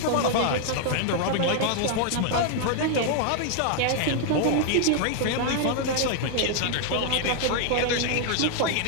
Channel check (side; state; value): both; different; correlation 0.00